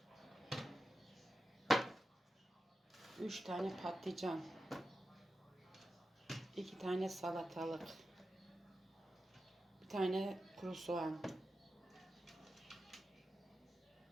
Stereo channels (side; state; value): both; normal; correlation 0.91